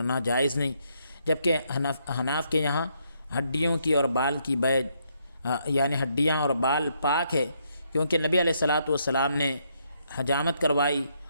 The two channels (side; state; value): both; inverted; correlation -0.74